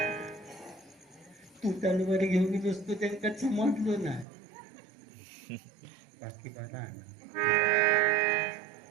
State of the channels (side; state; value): left; drops out; at 4.2 s